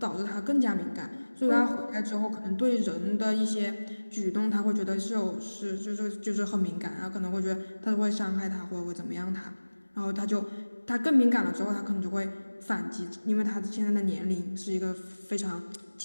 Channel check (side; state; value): both; inverted; correlation -1.00